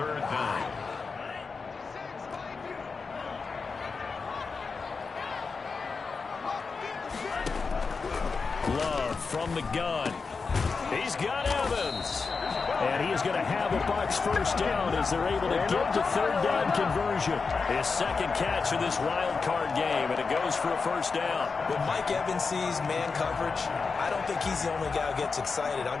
down. Love from the gun. He's got Evans. And he is going to have a Bucs first down as they're able to get the third down conversion. His second catch of this wild card game, and it goes for a first down. When Mike Evans sees man coverage, I don't think he's the only guy who gets excited.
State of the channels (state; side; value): quieter; right; 4.7 dB